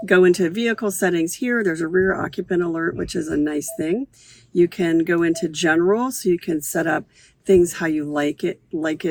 into vehicle settings here. There's a rear occupant alert, which is a nice thing. You can go into general, so you can set up things how you like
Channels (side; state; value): both; identical; correlation 1.00